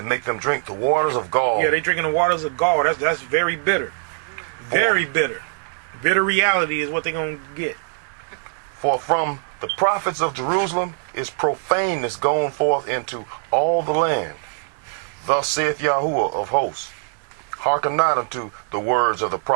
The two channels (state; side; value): silent; left; digital silence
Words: make them drink the waters of gall. Yeah, they're drinking the waters of gall. That's very bitter. Very bitter. Bitter reality is what they're going to get. For from the prophets of Jerusalem is profaneness gone forth into all the land. Thus saith Yahudah of hosts, hearken not unto the words of the